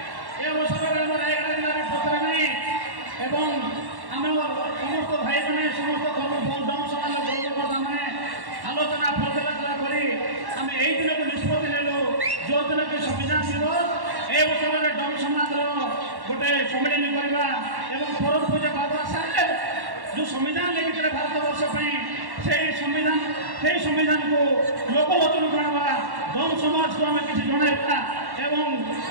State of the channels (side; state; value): left; late; 1.1 ms